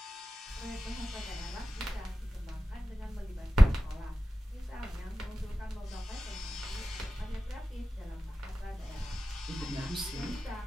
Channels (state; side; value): normal; both; correlation 0.94